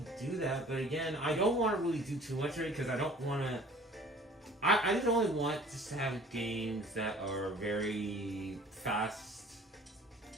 do that, but again, I don't want to really do too much of it, because I don't want to... I just only want just to have games that are very fast,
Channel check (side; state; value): both; normal; correlation 0.49